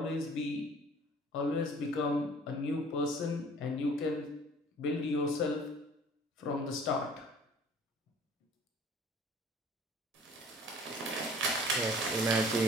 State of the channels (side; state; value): both; normal; correlation 0.50